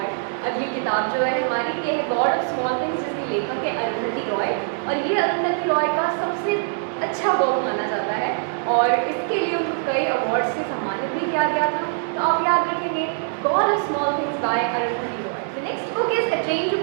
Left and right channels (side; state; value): left; silent; digital silence